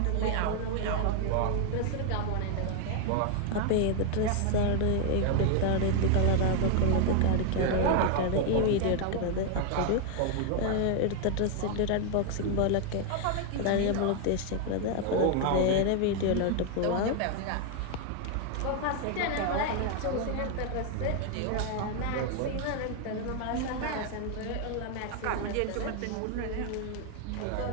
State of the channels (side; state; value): both; different; correlation 0.00